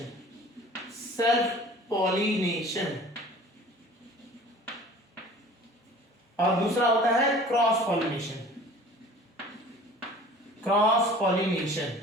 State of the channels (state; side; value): normal; both; correlation 0.46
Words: और दूसरा होता है क्रॉस पॉलिनेशन,